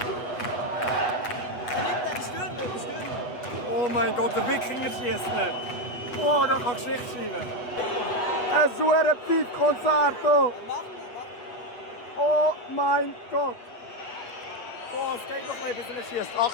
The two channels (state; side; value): late; right; 8.1 ms